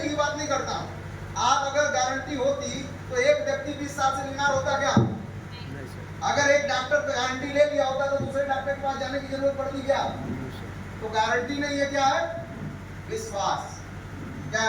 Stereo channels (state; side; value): identical; both; correlation 1.00